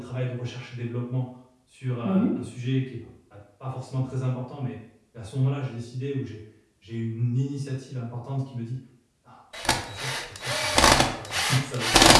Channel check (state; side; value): identical; both; correlation 1.00